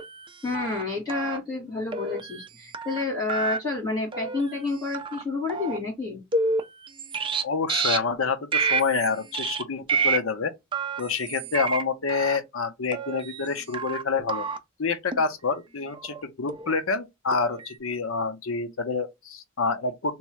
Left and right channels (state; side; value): normal; both; correlation -0.10